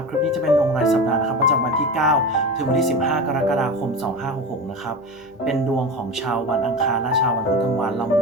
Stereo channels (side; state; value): left; noise; hum, 30 dB below the sound